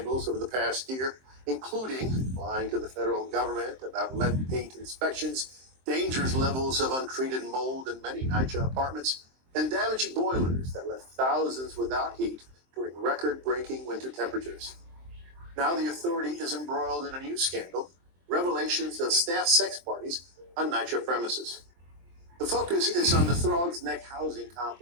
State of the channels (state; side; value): late; left; 23 ms